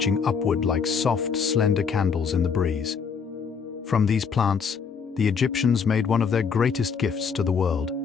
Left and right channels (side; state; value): right; quieter; 6.0 dB